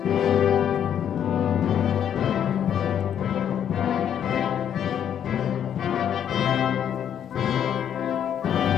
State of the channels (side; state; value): right; quieter; 9.4 dB